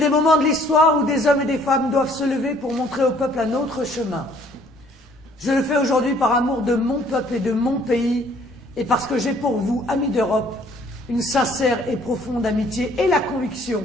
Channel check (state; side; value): normal; both; correlation 0.59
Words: moments de l'histoire où des hommes et des femmes doivent se lever pour montrer au peuple un autre chemin. Je le fais aujourd'hui par amour de mon peuple et de mon pays et parce que j'ai pour vous, amis d'Europe, une sincère et profonde amitié et la conviction